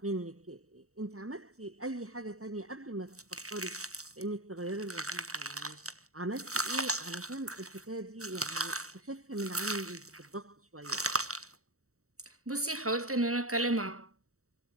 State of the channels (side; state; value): left; late; 0.64 ms